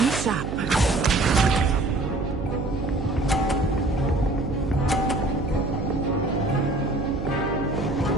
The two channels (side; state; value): right; noise; hum, 5 dB below the sound